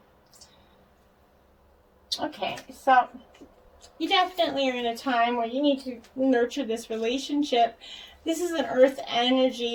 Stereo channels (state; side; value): identical; both; correlation 1.00